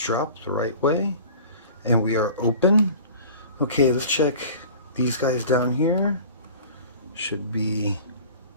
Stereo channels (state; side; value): inverted; both; correlation -0.42